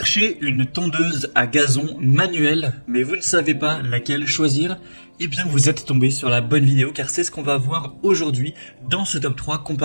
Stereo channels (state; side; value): inverted; both; correlation -1.00